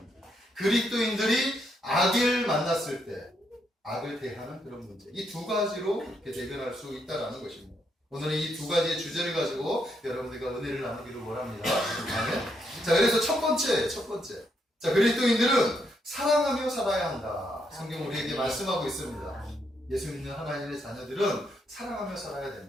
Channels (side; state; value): both; normal; correlation 0.77